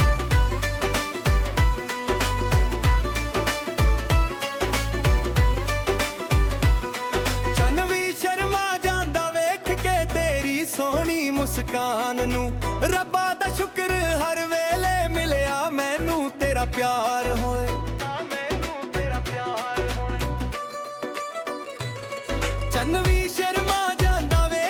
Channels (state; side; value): identical; both; correlation 1.00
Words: ਚੰਨ ਵੀ ਸ਼ਰਮਾ ਜਾਂਦਾ ਵੇਖ ਕੇ ਤੇਰੀ ਸੋਹਣੀ ਮੁਸਕਾਨ ਨੂੰ, ਰੱਬਾ ਦਾ ਸ਼ੁਕਰ ਹਰ ਵੇਲੇ ਮਿਲਿਆ ਮੈਨੂੰ ਤੇਰਾ ਪਿਆਰ ਹੋਏ। ਚੰਨ ਵੀ ਸ਼ਰਮਾ ਜਾਂਦਾ